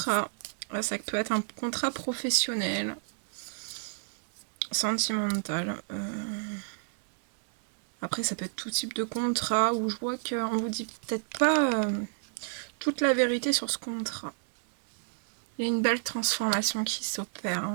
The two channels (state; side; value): silent; left; digital silence